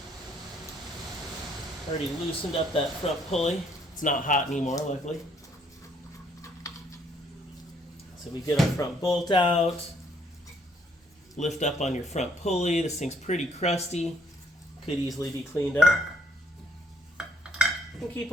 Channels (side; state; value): both; normal; correlation 0.66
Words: Already loosened up that front pulley. It's not hot anymore, luckily. So we get our front bolt out, lift up on your front pulley. This thing's pretty crusty, could easily be cleaned up. And keep